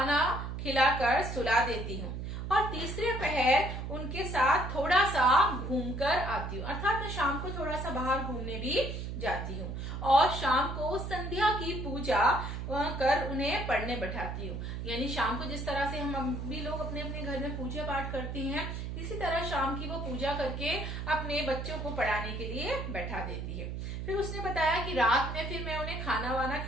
खिलाकर सुला देती हूँ और तीसरे पहर उनके साथ थोड़ा सा घूमकर आती हूँ, अर्थात मैं शाम को थोड़ा सा बाहर घूमने भी जाती हूँ और शाम को संध्या की पूजा कर उन्हें पढ़ने बैठाती हूँ। यानी शाम को जिस तरह से हम भी लोग अपने अपने घर में पूजा पाठ करते हैं, इसी तरह शाम की वो पूजा करके अपने बच्चों को पढ़ाने के लिए बैठा देती है। फिर उसने बताया कि रात में फिर मैं उन्हें खाना वाना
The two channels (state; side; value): noise; right; hum, 5 dB below the sound